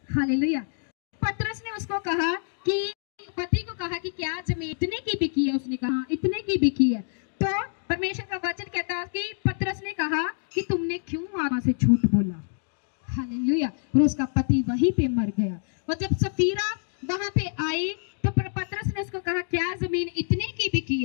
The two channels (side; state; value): right; silent; 60 dB below the other